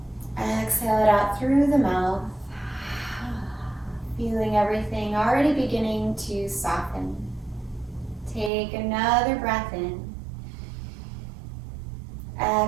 Exhale it out through the mouth, feeling everything already beginning to soften. Take another breath in.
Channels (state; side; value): drops out; left; at 8.5 s